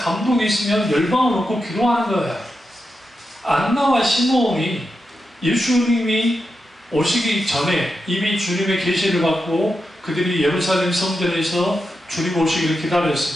있으면 열방을 놓고 기도하는 거예요. 안나와 시므온이 예수님이 오시기 전에 이미 주님의 계시를 받고 그들이 예루살렘 성전에서 주님 오시기를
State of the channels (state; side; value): normal; both; correlation 0.88